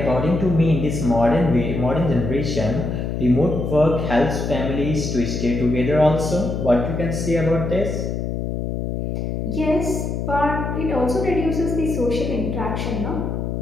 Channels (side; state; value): left; noise; hum, 3 dB below the sound